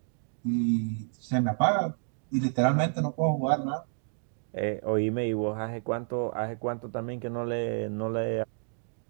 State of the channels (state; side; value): silent; left; 58 dB below the other